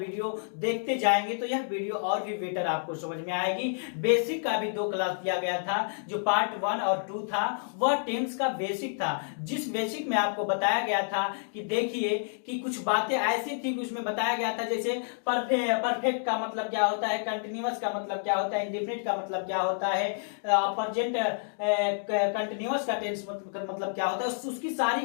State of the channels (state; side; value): silent; right; digital silence